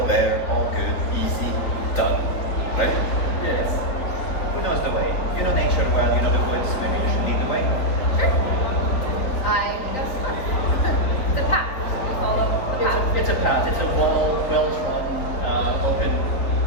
there, all good, easy, done, right? Yes. Who knows the way? You know nature well, you know the woods, maybe you should lead the way. Sure. I guess not. The path. We follow the path. It's a path. It's a well-trodden, open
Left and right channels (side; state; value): right; late; 4.0 ms